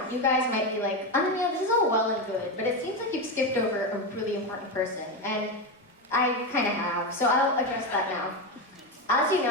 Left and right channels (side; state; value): both; normal; correlation 0.13